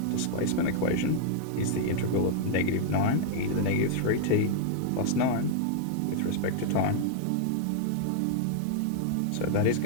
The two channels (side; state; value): both; different; correlation -0.01